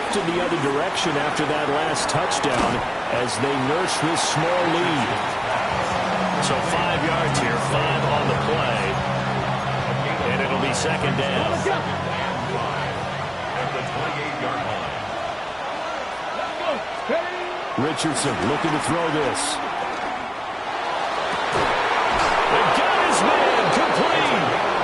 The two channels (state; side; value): identical; both; correlation 1.00